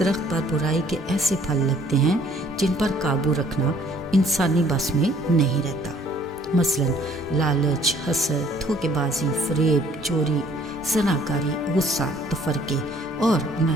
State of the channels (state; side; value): normal; both; correlation 0.59